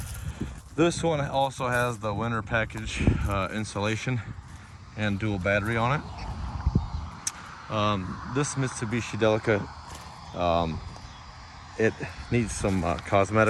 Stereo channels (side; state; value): both; identical; correlation 1.00